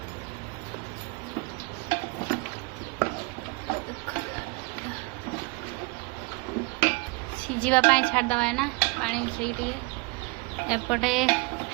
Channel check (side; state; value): left; quieter; 27.7 dB